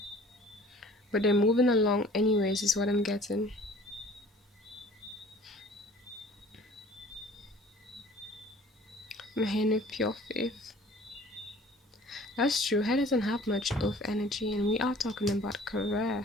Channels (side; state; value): both; normal; correlation 0.49